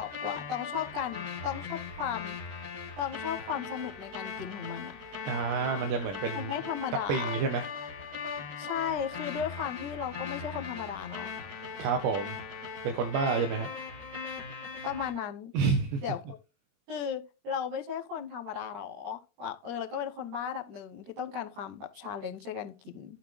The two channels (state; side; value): late; left; 21 ms